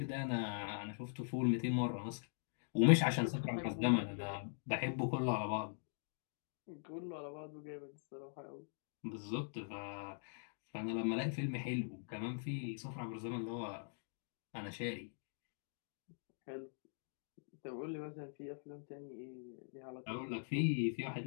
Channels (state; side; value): silent; right; digital silence